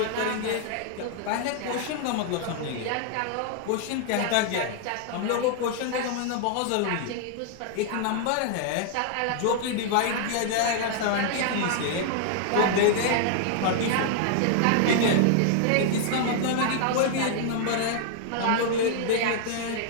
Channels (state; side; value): different; both; correlation 0.00